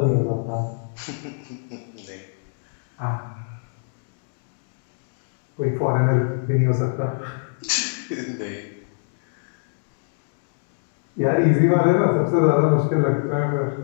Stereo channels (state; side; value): silent; right; digital silence